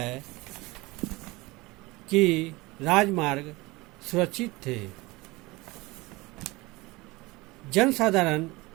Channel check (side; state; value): left; quieter; 22.3 dB